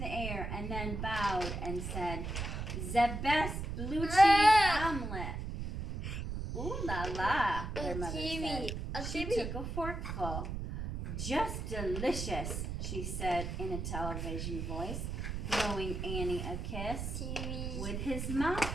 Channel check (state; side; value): noise; right; rumble, 4 dB below the sound